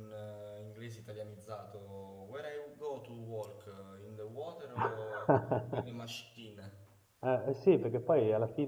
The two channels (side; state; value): both; identical; correlation 1.00